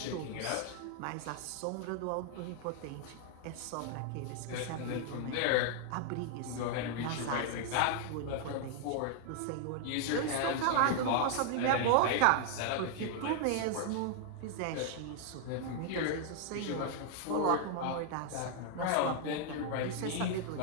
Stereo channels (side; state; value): both; different; correlation 0.00